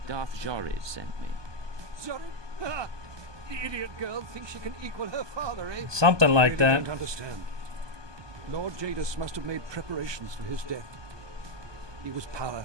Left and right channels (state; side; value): late; left; 1.2 ms